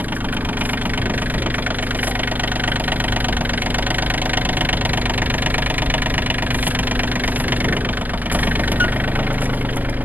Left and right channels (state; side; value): late; left; 0.087 ms